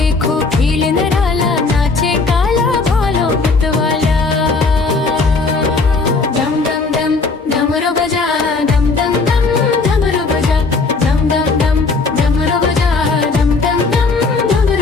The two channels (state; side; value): quieter; right; 4.0 dB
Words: खेल निराला, नाचे काला भालो मतवाला। दम दम दम डमरू बजा, दम दम दम डमरू बजा। दम दम दम डमरू बजा, दम दम दम